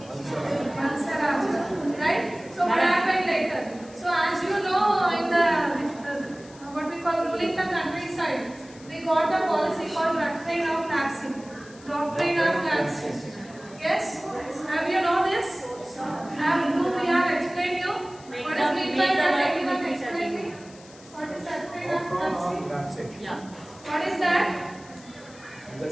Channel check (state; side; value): noise; left; hiss, 22 dB below the sound